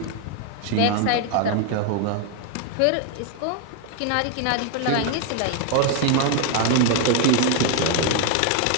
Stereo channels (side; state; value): both; different; correlation 0.01